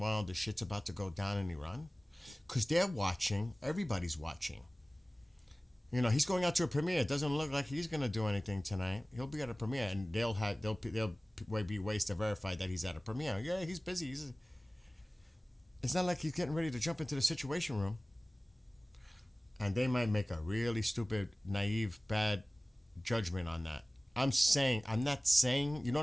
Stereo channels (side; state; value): both; normal; correlation 0.98